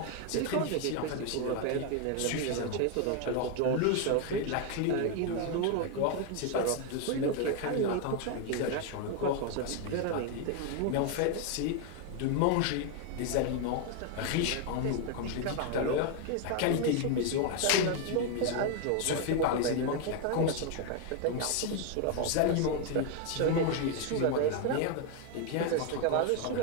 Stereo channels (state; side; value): different; both; correlation 0.01